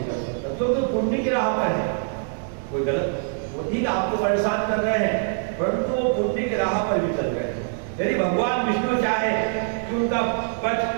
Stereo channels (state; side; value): silent; left; digital silence